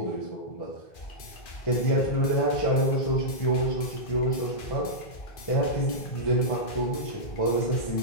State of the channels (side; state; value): right; late; 2.4 ms